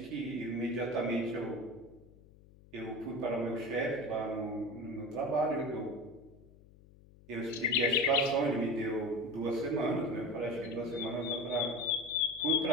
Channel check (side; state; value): left; noise; hum, 23 dB below the sound